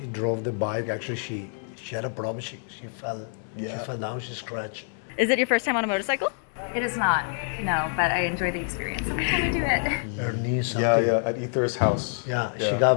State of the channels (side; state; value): right; silent; digital silence